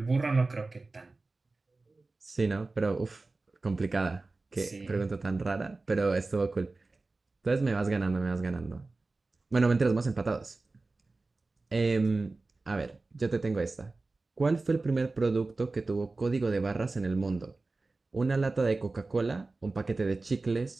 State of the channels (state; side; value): quieter; left; 3.5 dB